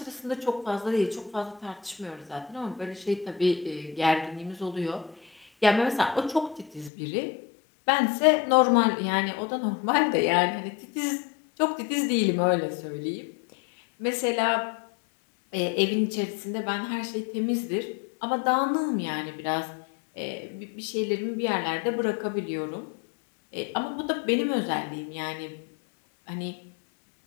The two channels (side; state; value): right; drops out; at 6.9 s